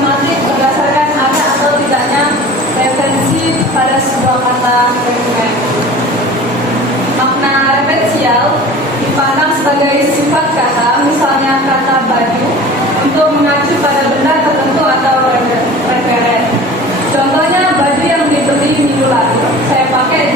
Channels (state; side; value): normal; both; correlation 0.40